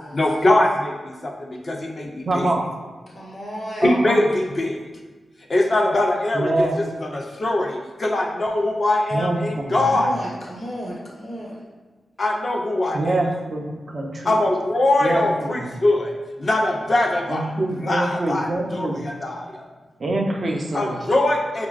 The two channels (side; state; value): both; normal; correlation 0.91